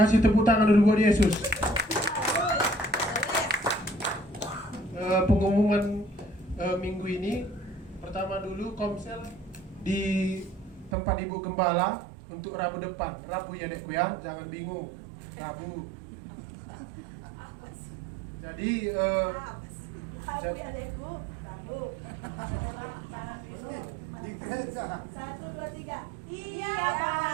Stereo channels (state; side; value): drops out; left; at 11.0 s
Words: tepuk tangan dulu buat Yesus. Pengumuman minggu ini, pertama dulu komsel di tempat Ibu Gembala untuk Rabu depan. Rabu ya dekku ya, jangan bingung. Rabu. Jadi Di gereja. 1, 2, 3. Iya,